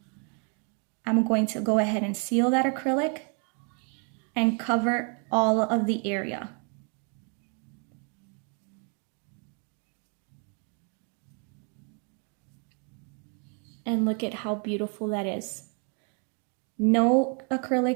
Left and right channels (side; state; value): left; quieter; 39.2 dB